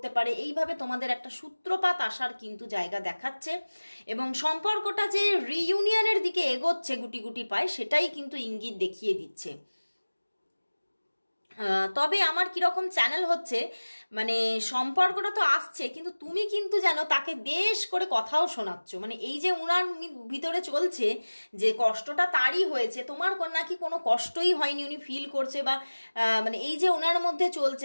পারে। এইভাবে তোমাদের একটা সূত্রপাত আসার কিন্তু জায়গা দেখাচ্ছে, এবং সম্পর্কটা যে রিইউনিয়নের দিকে এগোচ্ছে গুটি গুটি পায়, সেটাই কিন্তু ইঙ্গিত দেখিয়ে দিচ্ছে। তবে আমার কিরকম চ্যানেল হচ্ছে, মানে সম্পর্কটা তো আসছে, কিন্তু তুমি কিন্তু যেন তাকে বেশ করে কথাও শোনাচ্ছ। মানে এই যে উনার ভিতরে চলছে যে কষ্টটা তারই হয়েছে, তোমার নাকি কোনো কষ্টই হয়নি, উনি ফিল করছে, বা মানে এই যে ওনার মধ্যে চলছে,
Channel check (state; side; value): inverted; both; correlation -1.00